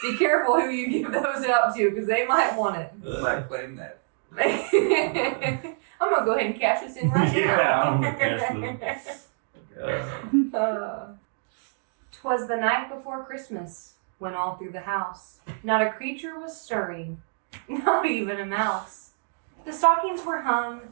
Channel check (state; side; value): silent; left; 61 dB below the other